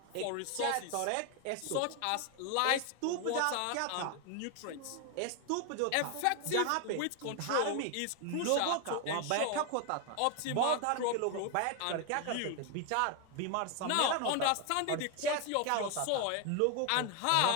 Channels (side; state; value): both; different; correlation 0.01